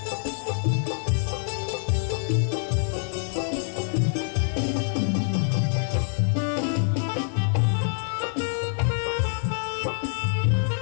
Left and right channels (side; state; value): right; silent; 61 dB below the other